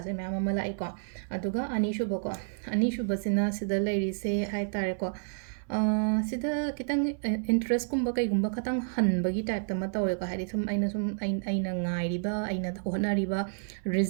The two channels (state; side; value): silent; left; 58 dB below the other